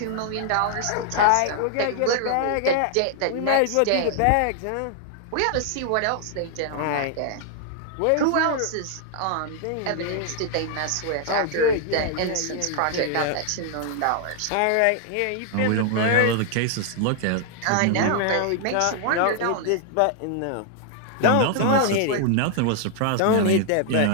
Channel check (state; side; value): different; both; correlation 0.00